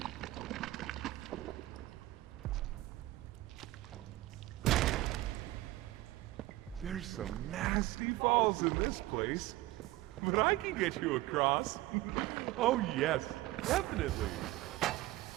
There's some nasty falls in this place, but I can get you across. Oh yes, definitely.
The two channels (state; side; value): quieter; left; 17.6 dB